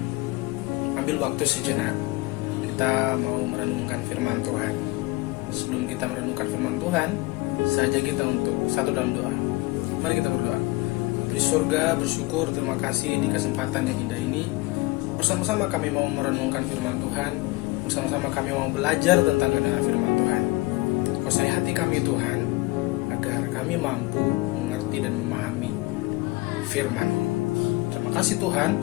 ambil waktu sejenak. Kita mau merenungkan firman Tuhan. Sebelum kita merenungkan firman Tuhan, saja kita untuk satu dalam doa. Mari kita berdoa. Bapa di surga, bersyukur, terima kasih di kesempatan yang indah ini. Bersama-sama kami mau merenungkan firman Tuhan. Bersama-sama kami mau belajar tentang kebenaran firman Tuhan. Kuasai hati kami Tuhan, agar kami mampu mengerti dan memahami firman. Terima kasih Tuhan.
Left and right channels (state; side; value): quieter; right; 22.1 dB